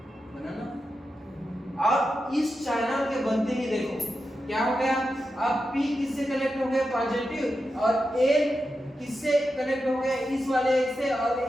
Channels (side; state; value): both; normal; correlation 0.89